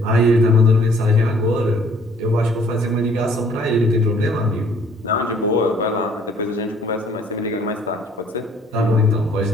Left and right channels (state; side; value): normal; both; correlation 0.59